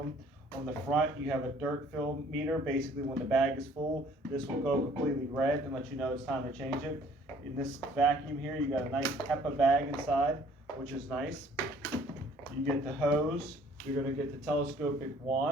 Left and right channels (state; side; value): normal; both; correlation 0.57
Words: On the front, you have a dirt fill meter. Basically, when the bag is full, this will go completely red and let you know it's time to change it. In this vacuum here, you got a nice HEPA bag inside, which is nice. You get the hose. You're going to get the telescopic